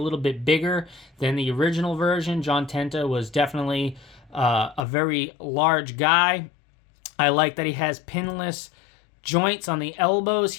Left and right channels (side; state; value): right; drops out; at 4.9 s